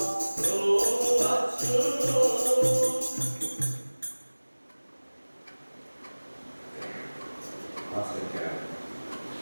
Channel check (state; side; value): inverted; both; correlation -1.00